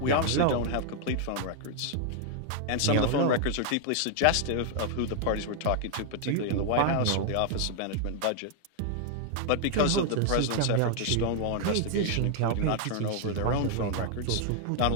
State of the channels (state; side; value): different; both; correlation 0.00